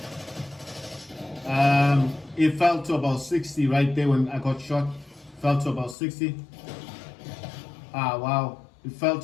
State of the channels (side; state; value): right; drops out; at 6.0 s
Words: It fell to about 60 right there when I got shot. Fell to about 60. Wow. It fell